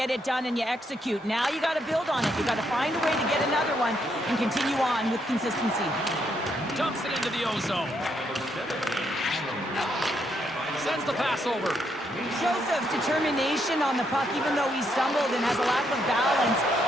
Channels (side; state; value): both; normal; correlation 0.76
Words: it done, and you execute. Now you got to build on it. You got to find a way to get another one and continue on with consistency. Dumps it into the ozone. Sends the pass over. Shows of determination on the puck, even though he stumbled and has a lack of balance.